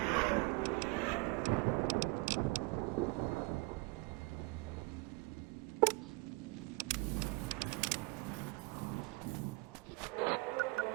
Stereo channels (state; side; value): quieter; left; 26.1 dB